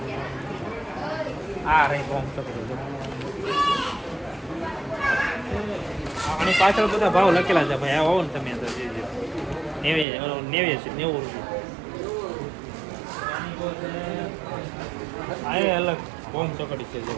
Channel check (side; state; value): left; drops out; at 10.1 s